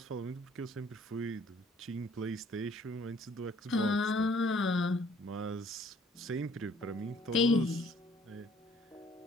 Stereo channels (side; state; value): both; normal; correlation 0.59